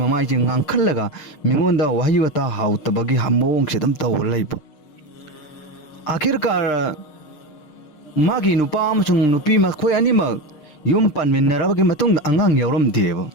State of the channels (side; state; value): right; late; 6.6 ms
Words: ममाई जे nganखलगा मिंगोंदा वही वता हाउतबगी हमोंग सेदम तौर लैबा आखिरकार मागी नुपा अमसुंग नुपी मखोय अनिमक युम पानमिन्नरबगी मतुंग अंगांग यावरमदेबा